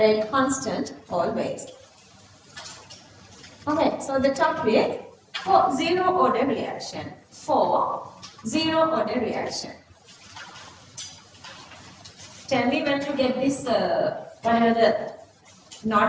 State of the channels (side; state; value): both; identical; correlation 1.00